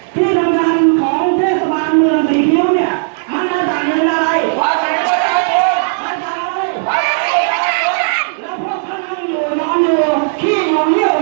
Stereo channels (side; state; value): left; silent; digital silence